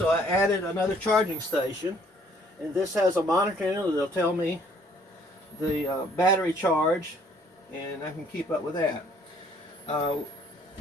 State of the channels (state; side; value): normal; both; correlation 0.61